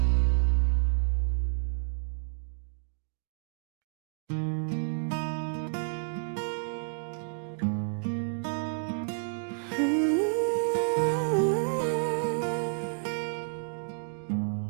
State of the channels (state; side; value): silent; left; digital silence